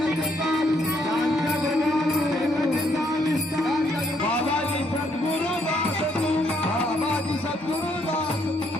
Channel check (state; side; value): normal; both; correlation 0.71